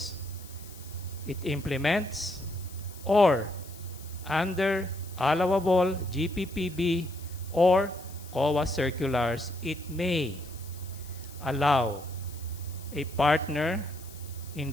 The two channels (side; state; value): left; noise; hiss, 19 dB below the sound